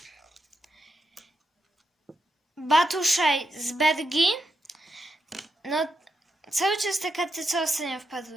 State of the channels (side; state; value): both; normal; correlation 0.85